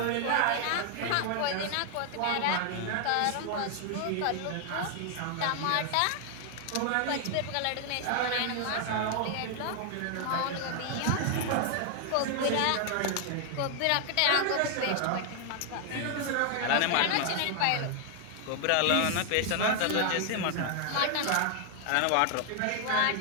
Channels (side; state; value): both; different; correlation 0.00